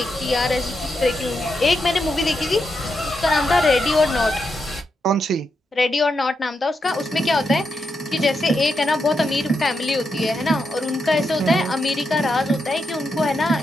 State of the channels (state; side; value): normal; both; correlation 0.84